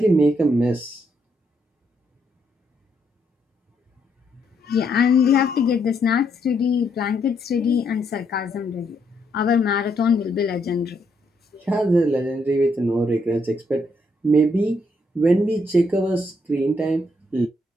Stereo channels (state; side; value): normal; both; correlation 0.75